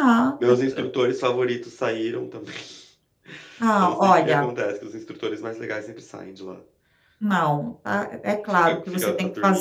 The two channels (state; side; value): identical; both; correlation 1.00